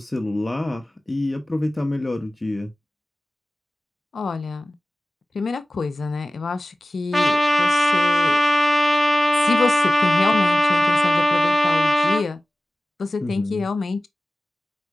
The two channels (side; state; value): both; normal; correlation 0.97